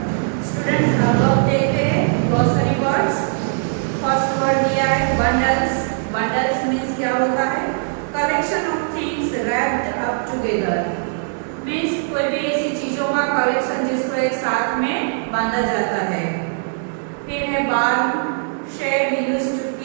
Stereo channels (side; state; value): left; silent; digital silence